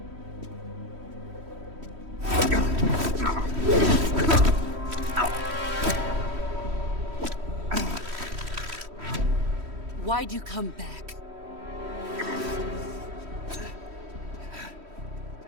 Why'd you come back?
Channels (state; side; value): late; left; 3.1 ms